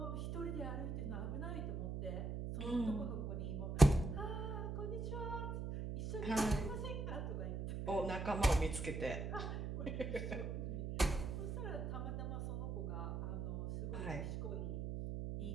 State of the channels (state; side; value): noise; right; hum, 3 dB below the sound